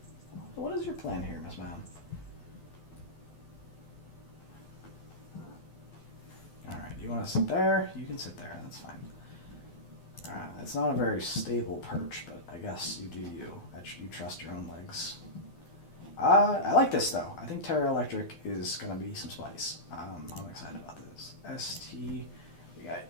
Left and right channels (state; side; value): late; right; 12 ms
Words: What is your plan here, Miss Ma'am? Alright, you want to sit there? You can sit there, that's fine. It's not a very stable perch, but I guess you do you. You trust your own legs. I like this, though. I think Terra Electric is going to be some spice. I'm excited about this. ST, we got